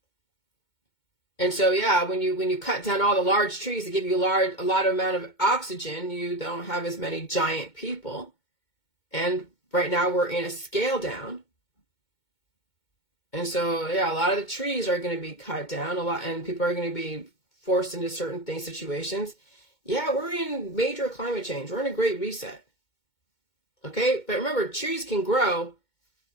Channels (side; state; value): right; late; 2.2 ms